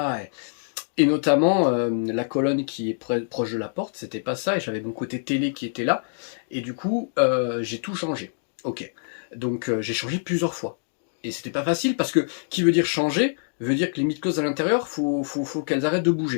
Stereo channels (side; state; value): right; silent; digital silence